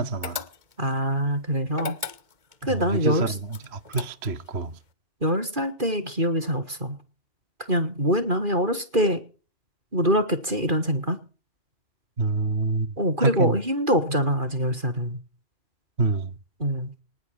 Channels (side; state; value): left; late; 2.4 ms